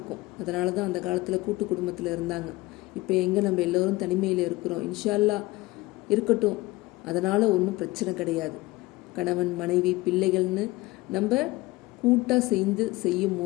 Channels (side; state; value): right; quieter; 20.4 dB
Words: அதனால தான் அந்த காலத்தில் கூட்டு குடும்பத்தில் இருந்தாங்க. இப்போ எங்கே நம்ம எல்லோரும் தனிமையில் இருக்கிறோம். இன்ஷா அல்லாஹ் இருக்கட்டும், அதனால் ஒன்றும் பிரச்சனை கிடையாது. கணவன் மனைவி பிள்ளைகள்னு நம்ம கூட்டாக சேர்ந்து செய்யும்